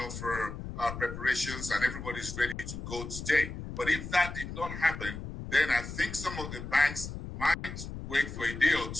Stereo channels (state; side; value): noise; left; rumble, 8 dB below the sound